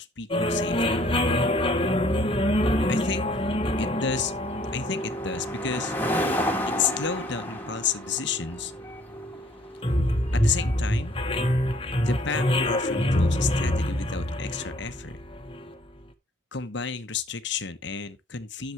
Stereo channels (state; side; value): normal; both; correlation 0.59